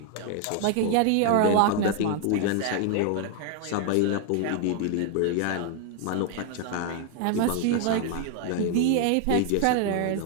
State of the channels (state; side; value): different; both; correlation 0.00